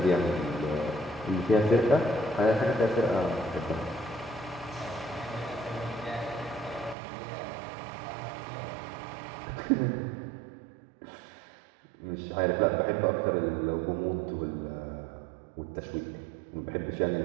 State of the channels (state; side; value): drops out; left; at 7.0 s